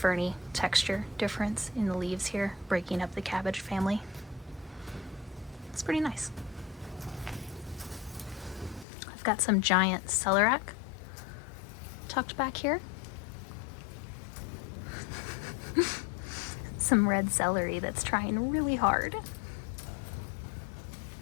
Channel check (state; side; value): drops out; right; at 8.8 s